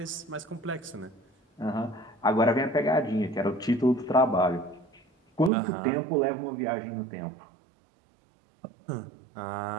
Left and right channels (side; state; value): left; drops out; at 5.5 s